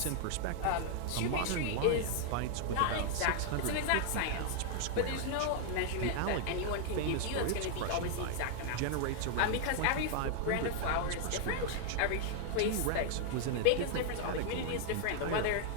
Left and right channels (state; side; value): different; both; correlation 0.00